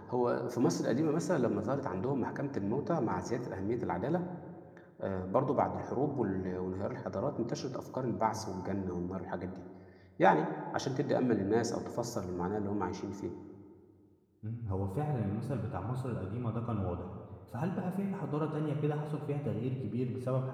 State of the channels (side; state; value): both; identical; correlation 1.00